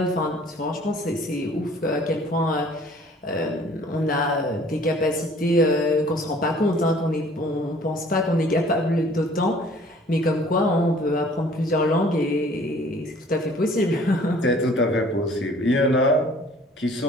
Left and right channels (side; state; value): both; normal; correlation 0.53